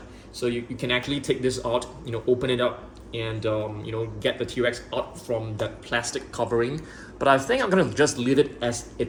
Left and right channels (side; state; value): both; identical; correlation 1.00